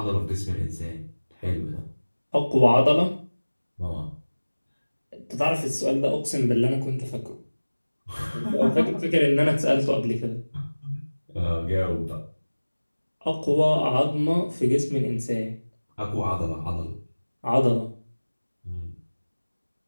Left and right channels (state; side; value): inverted; both; correlation -1.00